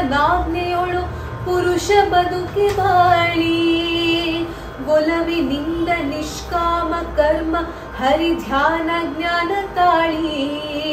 ನಾಜ್ಞೆಯೊಳು ಪುರುಷ ಬದುಕಿ ಬಾಳಿ. ಒಲವಿನಿಂದ ನಿಷ್ಕಾಮ ಕರ್ಮ ಹರಿ ಧ್ಯಾನ ಜ್ಞಾನ ತಾಳಿ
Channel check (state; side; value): identical; both; correlation 1.00